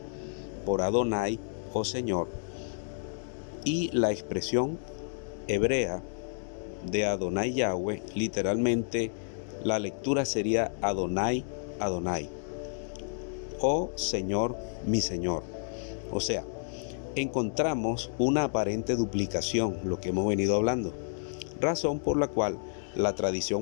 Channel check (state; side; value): silent; right; digital silence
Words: por Adonai o Señor, y la expresión hebrea de Adonai Yahweh, literalmente la lectura sería Adonai Adonai o Señor mi Señor. O sea, encontramos una aparente duplicación, lo que hemos venido hablando, razón por la cual la